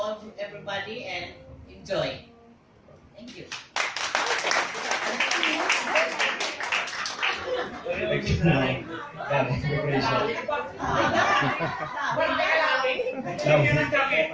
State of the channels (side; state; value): both; identical; correlation 1.00